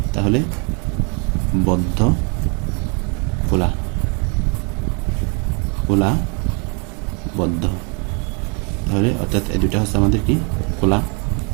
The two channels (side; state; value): left; quieter; 35.3 dB